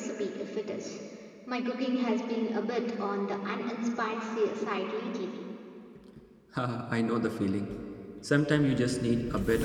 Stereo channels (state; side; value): identical; both; correlation 1.00